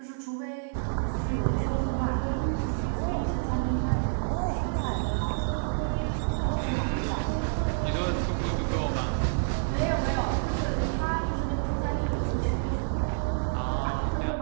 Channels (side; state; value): left; silent; digital silence